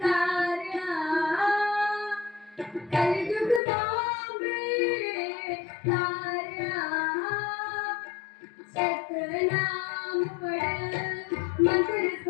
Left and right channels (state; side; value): drops out; right; at 3.6 s